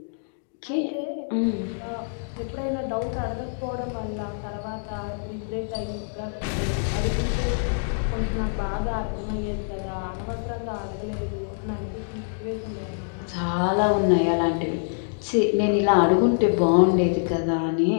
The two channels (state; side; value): silent; right; digital silence